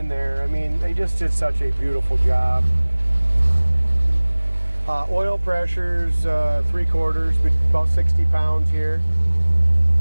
there. I mean, they just did such a beautiful job. Oil pressure's 3/4, but about 60 pounds here.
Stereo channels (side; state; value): both; inverted; correlation -1.00